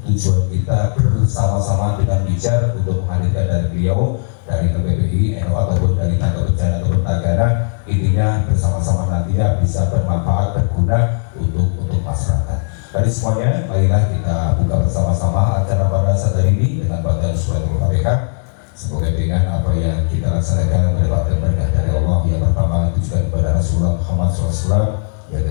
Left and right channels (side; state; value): right; silent; digital silence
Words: tujuan kita bersama-sama dengan Wijar untuk menghadirkan dari beliau, dari LPPI, NU ataupun dari tangga bencana turun tagana, intinya bersama-sama nantinya bisa bermanfaat, berguna untuk masyarakat. Jadi semuanya, marilah kita buka bersama-sama acara pada saat hari ini dengan bacaan suratul Fatihah. Semoga dengan apa yang kita laksanakan mendapatkan berkah dari Allah. Yang pertama ditujukan kepada Rasulullah Muhammad SAW.